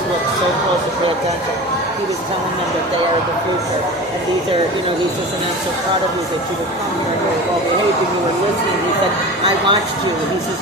look so close and pay attention. He was telling them that they are the future, and these are, you know, he says, and I'm so proud of you that you were coming here and you were well behaved and you were listening. He said, I watched you. He says,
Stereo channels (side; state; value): both; normal; correlation 0.33